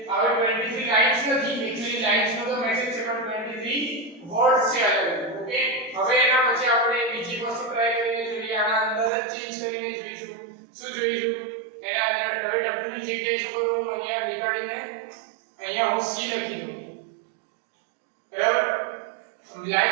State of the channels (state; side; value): drops out; left; at 9.1 s